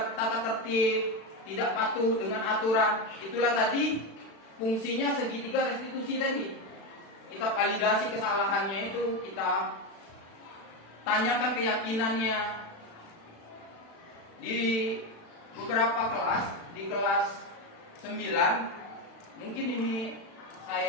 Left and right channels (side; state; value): right; late; 36 ms